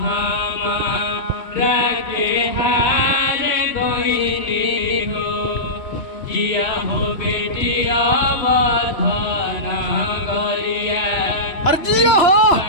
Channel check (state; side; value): late; right; 2.9 ms